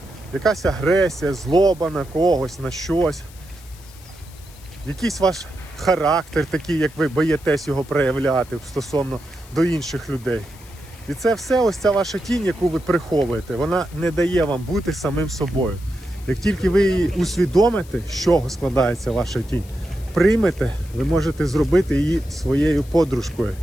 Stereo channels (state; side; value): noise; left; hiss, 23 dB below the sound